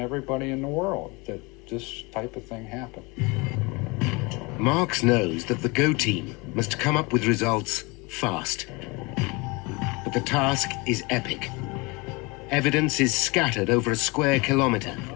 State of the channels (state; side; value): quieter; right; 26.7 dB